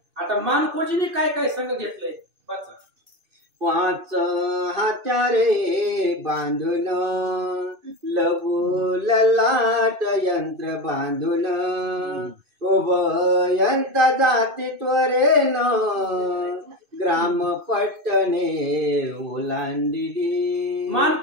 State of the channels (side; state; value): left; late; 2.6 ms